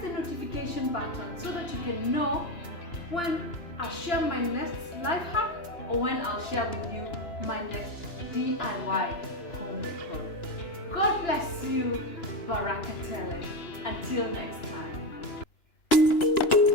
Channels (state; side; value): late; right; 2.9 ms